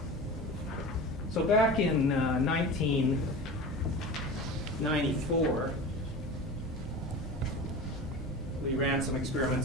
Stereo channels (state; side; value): normal; both; correlation 0.32